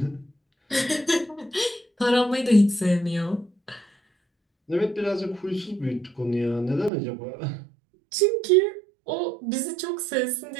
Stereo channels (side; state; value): left; drops out; at 6.9 s